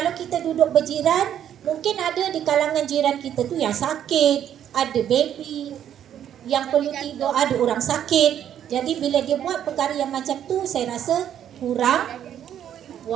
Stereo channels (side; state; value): left; quieter; 10.1 dB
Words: kita duduk berjiran, mungkin ada di kalangan jiran kita tu yang sakit, ada baby yang perlu tidur, ada orang sakit. Jadi bila dia buat perkara yang macam tu, saya rasa kurang